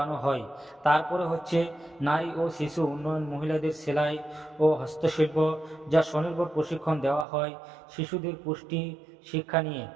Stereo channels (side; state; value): left; drops out; at 7.2 s